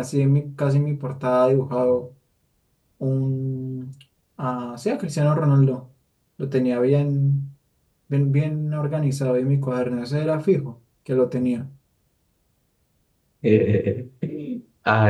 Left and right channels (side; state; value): both; identical; correlation 1.00